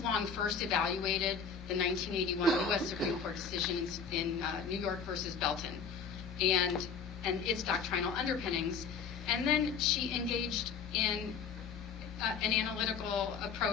Long first evaluated the 1981 U.S. Supreme Court decision in New York versus Belton and its doctrinal underpinnings. And then she engaged in an analytical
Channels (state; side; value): quieter; right; 6.1 dB